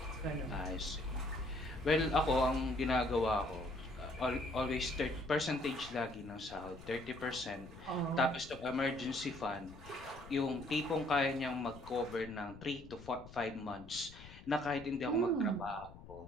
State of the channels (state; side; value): noise; left; rumble, 17 dB below the sound